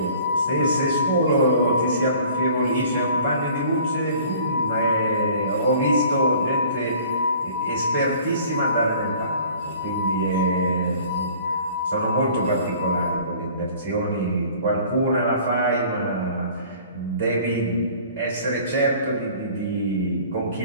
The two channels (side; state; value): both; inverted; correlation -0.50